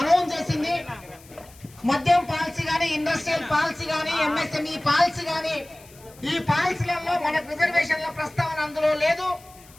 చేసింది. మద్యం పాలసీ గానీ, ఇండస్ట్రియల్ పాలసీ గానీ, ఎంఎస్ఎంఈ పాలసీ గానీ, ఈ పాలసీలలో మనకు రిజర్వేషన్ల ప్రస్తావన అందులో లేదు.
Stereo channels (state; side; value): noise; left; hiss, 24 dB below the sound